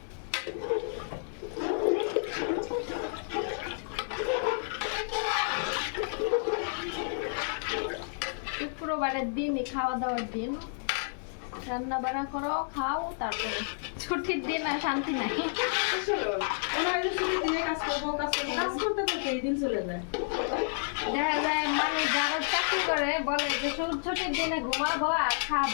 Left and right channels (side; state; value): right; silent; digital silence